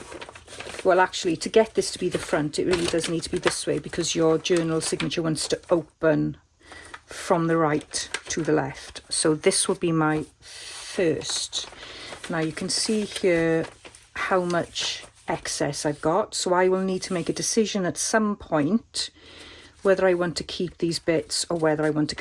well actually, to get this to be the front, it really does need to be this way, because your journal signature wants to open from the right to the left. So this will be my first. Now you can see here how much excess I've got, so I will need to make a decision at some point whether I want to keep these bits or whether I want to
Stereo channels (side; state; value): both; identical; correlation 1.00